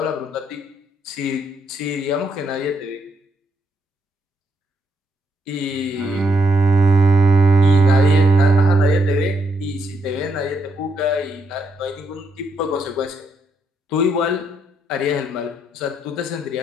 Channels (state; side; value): normal; both; correlation 0.77